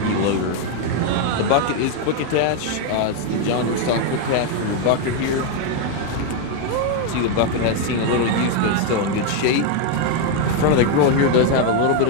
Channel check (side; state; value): both; different; correlation 0.01